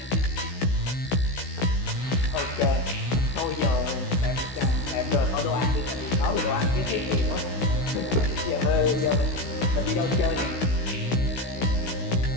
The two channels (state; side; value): late; right; 16 ms